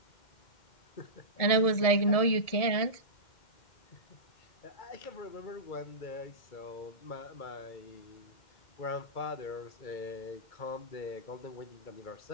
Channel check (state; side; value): late; right; 1.7 ms